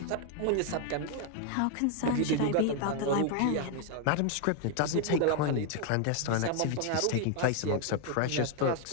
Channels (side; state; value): both; different; correlation 0.01